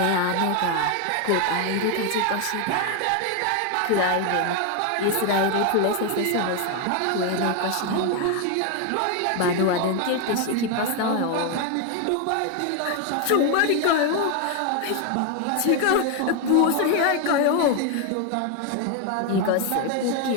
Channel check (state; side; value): different; both; correlation 0.01